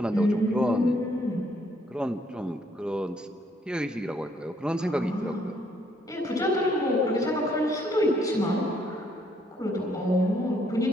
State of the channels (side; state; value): both; normal; correlation 0.69